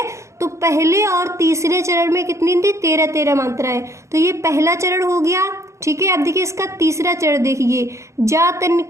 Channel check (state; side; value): late; left; 0.14 ms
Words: तो पहले और तीसरे चरण में कितनी थी, 13-13 मात्राएं। तो ये पहला चरण हो गया। ठीक है, अब देखिए इसका तीसरा चरण देखिए, जा तन